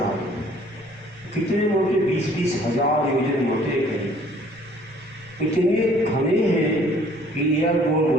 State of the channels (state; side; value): noise; left; rumble, 25 dB below the sound